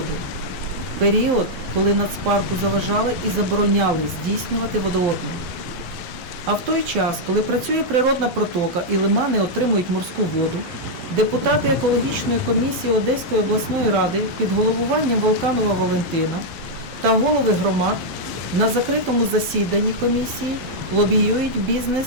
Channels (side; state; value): left; late; 11 ms